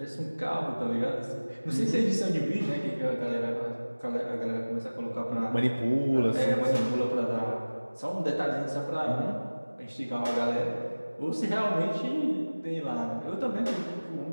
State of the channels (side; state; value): both; inverted; correlation -1.00